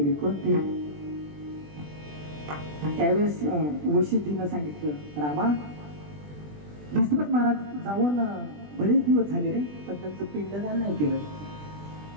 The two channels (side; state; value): left; late; 20 ms